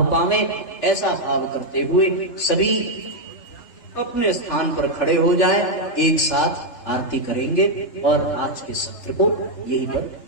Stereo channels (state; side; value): late; right; 3.3 ms